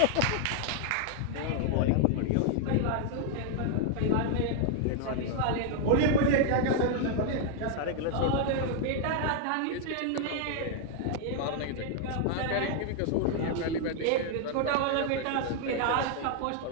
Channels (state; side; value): different; both; correlation 0.00